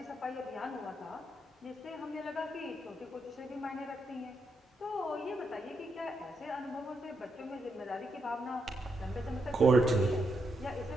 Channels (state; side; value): normal; both; correlation 0.81